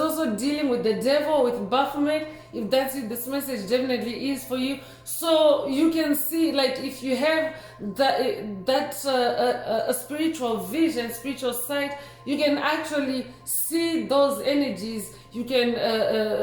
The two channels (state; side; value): identical; both; correlation 1.00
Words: dealing with the devil, with Baphomet. If that's you, this message definitely is for you. So you can see, like, if you have a spiritual vision, spiritual sight, you can actually see those energies. You can